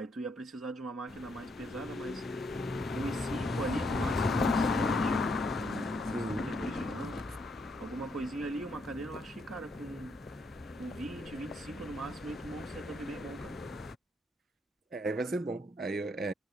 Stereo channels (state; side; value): normal; both; correlation 0.74